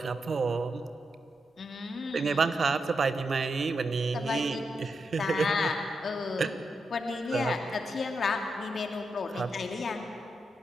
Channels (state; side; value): normal; both; correlation 0.85